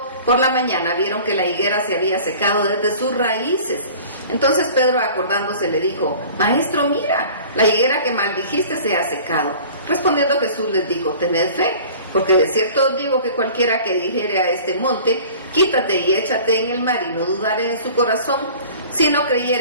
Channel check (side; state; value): both; inverted; correlation -0.44